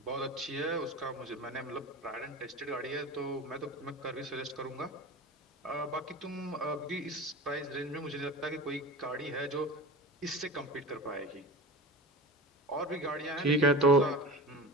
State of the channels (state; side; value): normal; both; correlation 0.33